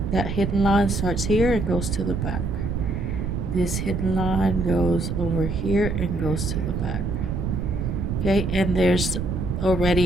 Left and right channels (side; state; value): right; noise; rumble, 3 dB below the sound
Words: that hidden line starts here and goes to the back. This hidden line goes over here and goes to the back. Okay, and there's